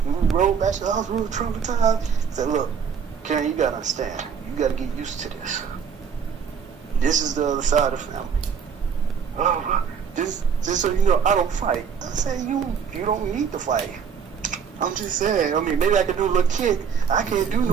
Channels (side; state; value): left; quieter; 6.9 dB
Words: we rolled back, she said, I was real traumatized. I said, look, Karen, you got to understand. You got to get used to this. This is the other side of the family. Oh, just so you know, I don't fight. I said, you don't need to fight. I'm just saying, I mean, maybe I could do a little kick. I can't do no